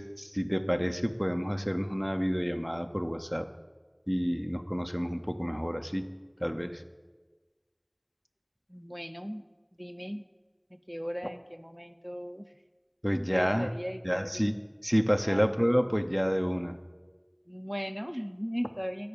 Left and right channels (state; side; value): identical; both; correlation 1.00